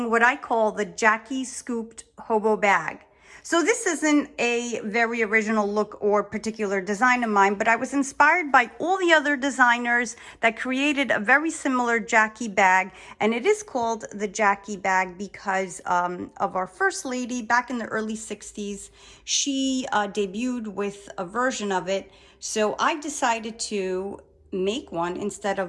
what I call the Jackie Scooped Hobo Bag. So this isn't a very original look or particular design of mine, but I was inspired by all the other designers that created a very similar Jackie bag. And it is called the Jackie bag because of our first lady back in the early 60s. She debuted with a version of it. So I decided to make one instead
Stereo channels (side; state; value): both; identical; correlation 1.00